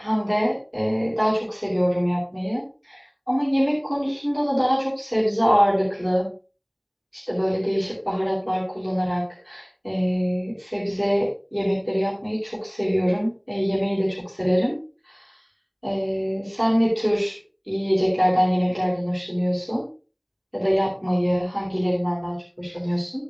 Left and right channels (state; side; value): identical; both; correlation 1.00